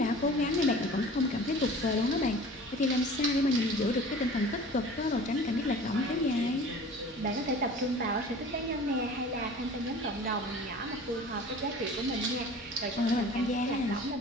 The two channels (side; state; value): both; normal; correlation 0.43